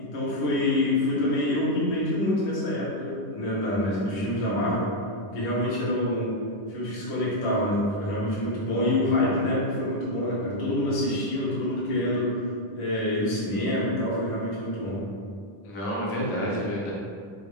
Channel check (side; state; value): right; late; 10 ms